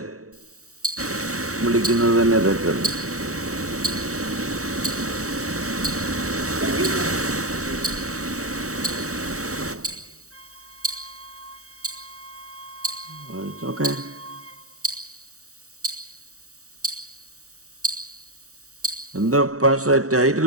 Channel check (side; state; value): left; late; 0.65 ms